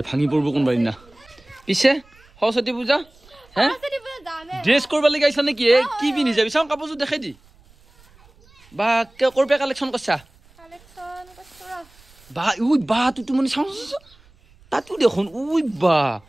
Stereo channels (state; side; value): noise; right; rumble, 28 dB below the sound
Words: ভাঙি পৰিব কোনোবা দিনা পিছে সৰস্বতী পূজা হে ড্ৰেছ কৰিব লাগি আহিছা নেকি কি পিন্ধি যাবি চাওঁ কাপোৰযোৰ দেখাই দি বা কৰপে কালেকশ্যন কৰিছা বা তুই মানে চাওঁ তাতো দেখোন বা